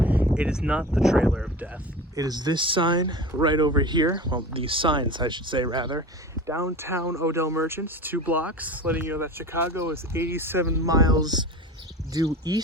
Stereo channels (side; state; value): both; normal; correlation 0.33